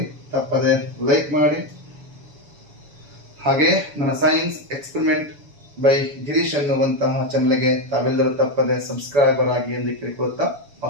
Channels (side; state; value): left; late; 7.0 ms